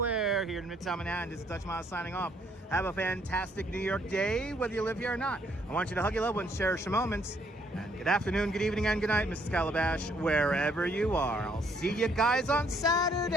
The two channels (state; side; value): normal; both; correlation 0.68